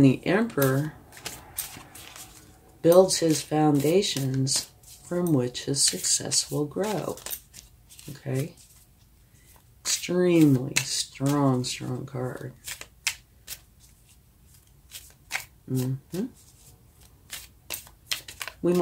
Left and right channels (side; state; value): both; identical; correlation 1.00